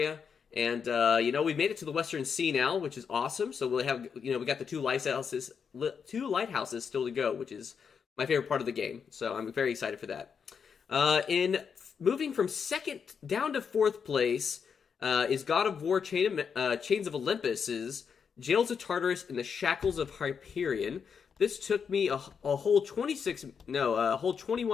And, we made it to the Western Sea now, which is awesome. So we'll have, we got the 2 lighthouses still to go, which is my favorite part of the game. So I'm very excited for that. In moving from 2nd down to 4th place is God of War Chains of Olympus's Jails of Tartarus and the Shackles of Hyperion. This took me a whole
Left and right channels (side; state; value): right; quieter; 6.5 dB